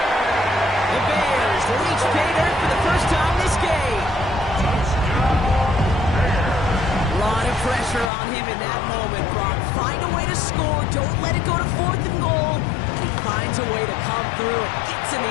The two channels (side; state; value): right; drops out; at 8.1 s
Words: The Bears reach pay dirt for the first time this game. A lot of pressure on him in that moment, Brock. Find a way to score. Don't let it go to 4th and goal. He finds a way to come through and gets in